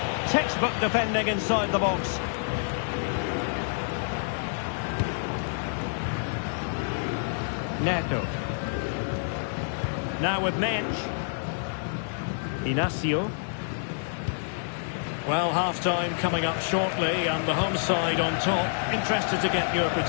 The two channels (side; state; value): right; silent; digital silence